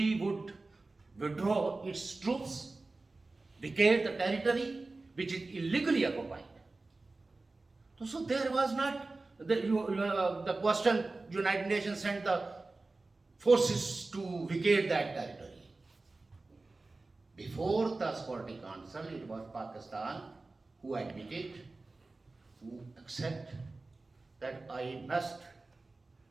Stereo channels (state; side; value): quieter; left; 3.4 dB